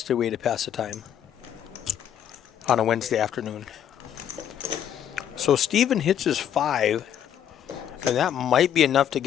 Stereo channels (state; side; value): quieter; right; 9.8 dB